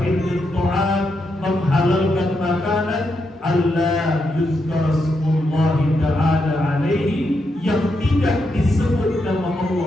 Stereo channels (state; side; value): normal; both; correlation 0.82